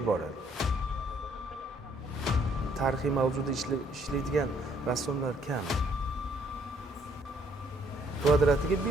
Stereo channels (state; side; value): normal; both; correlation 0.66